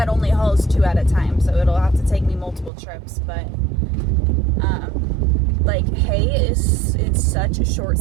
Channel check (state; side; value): drops out; left; at 2.7 s